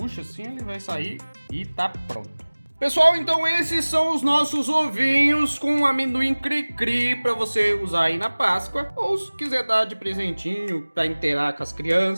assim, ele vai sair e tá pronto. Pessoal, então esses são os nossos ovinhos com amendoim cri-cri para você usar aí na Páscoa, ou se quiser dar de presentinho para inteirar com as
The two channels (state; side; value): inverted; both; correlation -1.00